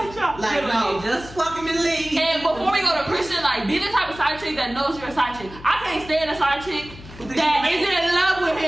Like, no, just fuck him and leave. And before we go to Christian, like, be the type of side chick that knows you're a side chick. I can't stand a side chick that is in love with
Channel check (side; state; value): left; noise; hum, 17 dB below the sound